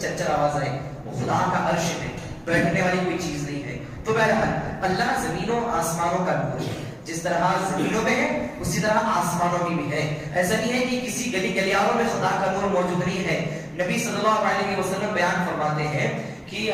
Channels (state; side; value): identical; both; correlation 1.00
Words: آواز آئے. وہ خدا کا عرش ہے, بیٹھنے والی کوئی چیز نہیں ہے. تو بہرحال اللہ زمینوں آسمانوں کا نور ہے. جس طرح زمینوں میں ہے اسی طرح آسمانوں میں بھی ہے. ایسا نہیں ہے کہ کسی گلی گلیاروں میں خدا کا نور موجود نہیں ہے. نبی صلی اللہ علیہ وسلم بیان فرماتے ہیں کہ